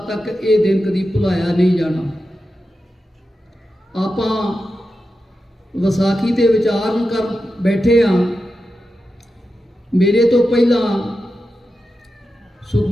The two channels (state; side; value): normal; both; correlation 0.90